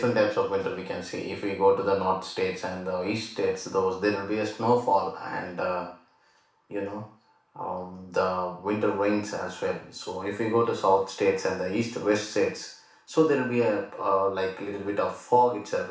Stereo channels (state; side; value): identical; both; correlation 1.00